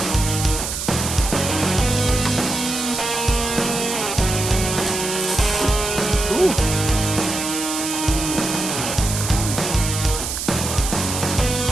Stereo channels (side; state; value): right; noise; hiss, 4 dB below the sound